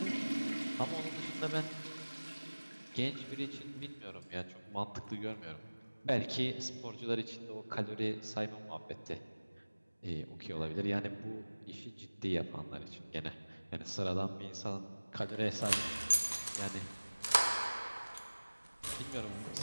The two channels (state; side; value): inverted; both; correlation -1.00